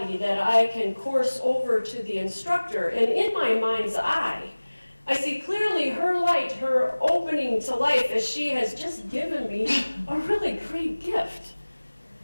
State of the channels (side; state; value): both; inverted; correlation -1.00